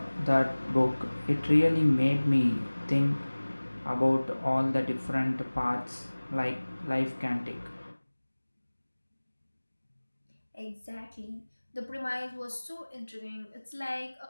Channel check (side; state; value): both; inverted; correlation -1.00